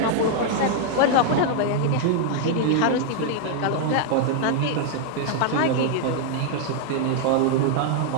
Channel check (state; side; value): different; both; correlation 0.00